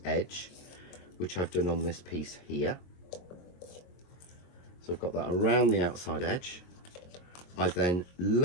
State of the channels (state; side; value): late; right; 22 ms